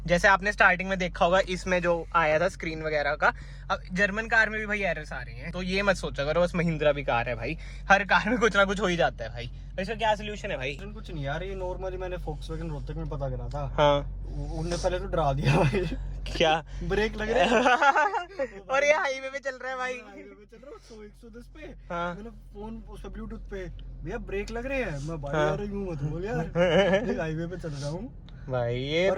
जैसे आपने स्टार्टिंग में देखा होगा इसमें जो आया था स्क्रीन वगैरह का, अब जर्मन कार में भी भाई एरर्स आ रही हैं। तो ये मत सोचा करो बस महिंद्रा भी कार है भाई, हर कार में कुछ ना कुछ हो ही जाता है भाई। तो इसका क्या सोल्यूशन है भाई? कुछ नहीं यार, ये नॉर्मली मैंने फोक्सवैगन रोहतक में पता करा था। हाँ, उनने पहले तो डरा दिया भाई। क्या ब्रेक लग रहे हैं। और ये हाईवे पे चल रहा है भाई। हाईवे पे चल रहा हूँ 100-110 पे। हाँ। मैंने फोन उस पे ब्लूटूथ पे, भैया ब्रेक लग रहे हैं। मैं भाई हाँ। यार यूं मत बोल यार, हाईवे पे चल रहा हूँ भाई ये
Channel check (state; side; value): identical; both; correlation 1.00